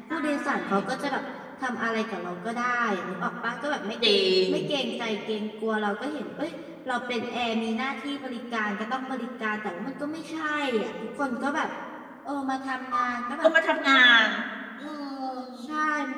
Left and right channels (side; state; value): both; identical; correlation 1.00